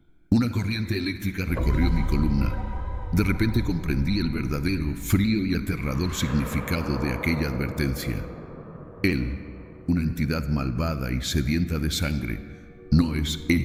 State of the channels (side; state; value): both; identical; correlation 1.00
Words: Una corriente eléctrica recorrió mi columna. De repente comprendí el verdadero, frío y aterrador significado de aquella advertencia. Él, una entidad malvada y sedienta de sangre, no es